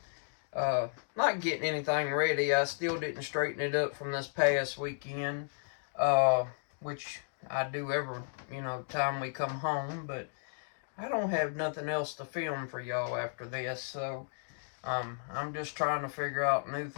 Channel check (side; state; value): right; silent; digital silence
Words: not getting anything ready. I still didn't straighten it up from this past weekend, which I do every, time we come home, but I don't have nothing else to film for y'all after this, so, I'm just trying to figure out new